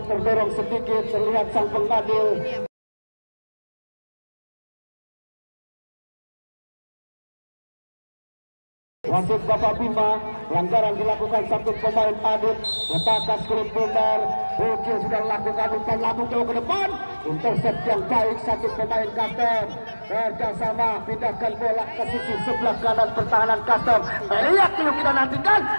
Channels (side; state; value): both; inverted; correlation -1.00